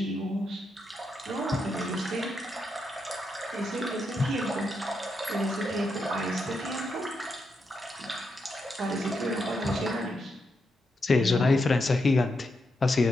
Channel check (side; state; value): both; normal; correlation 0.84